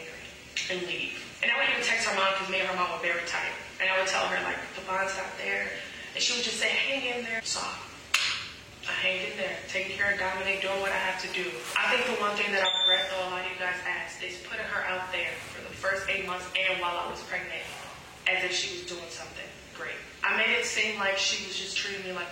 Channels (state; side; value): identical; both; correlation 1.00